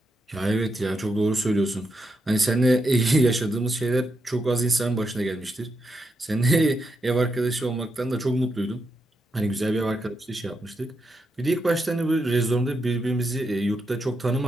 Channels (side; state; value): both; normal; correlation 0.83